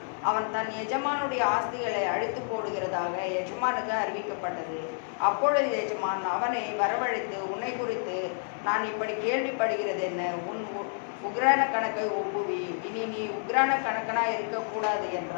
அவன் தன் எஜமானுடைய ஆஸ்திகளை அழித்து போடுகிறதாக எஜமானுக்கு அறிவிக்கப்பட்டது. அப்பொழுது எஜமான் அவனை வரவழைத்து, உன்னை குறித்து நான் இப்படி கேள்விப்படுகிறது என்ன? உன் உக்ரான கணக்கை ஒப்புவி, இனி நீ உக்ரான கணக்கனாய் இருக்கக்கூடாது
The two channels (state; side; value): silent; right; 56 dB below the other